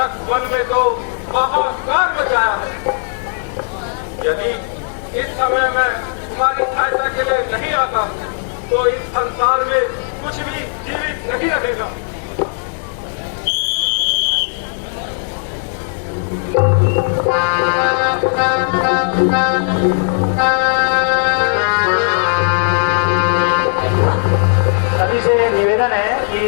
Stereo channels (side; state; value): right; silent; digital silence